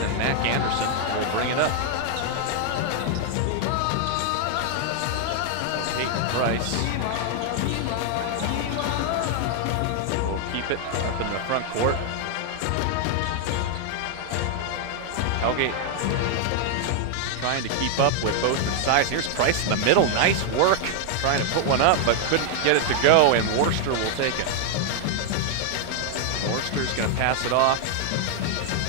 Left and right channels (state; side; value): different; both; correlation 0.00